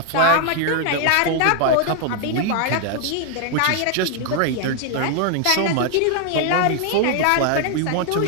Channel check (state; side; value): different; both; correlation 0.00